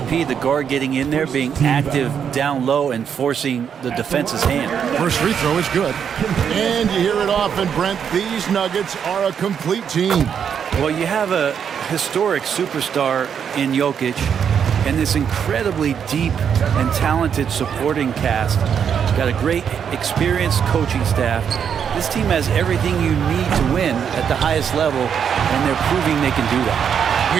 the guard, getting in there, being active down low and forcing the defense's hand? First free throw is good. And you hear it often, Brent. These Nuggets are a complete team. Well, you have a historic superstar in Jokic and this incredibly deep and talented supporting cast. Got a great experienced coaching staff. This team has everything you need to win at the highest level, and they're proving they can do that.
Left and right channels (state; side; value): quieter; left; 7.7 dB